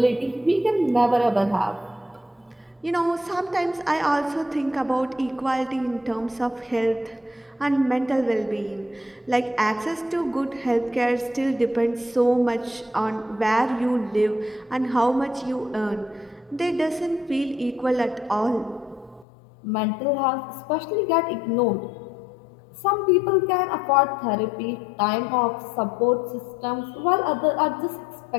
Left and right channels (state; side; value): drops out; right; at 19.2 s